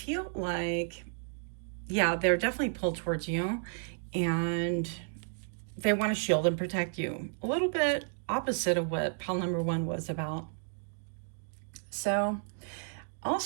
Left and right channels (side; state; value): left; silent; 56 dB below the other